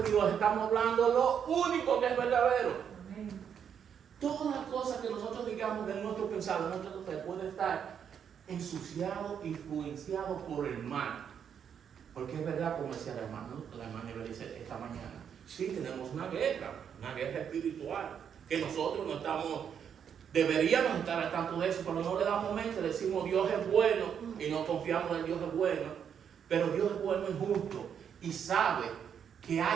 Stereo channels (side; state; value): left; quieter; 8.0 dB